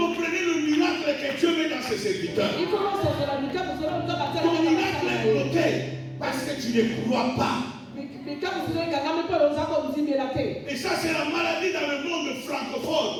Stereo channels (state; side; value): identical; both; correlation 1.00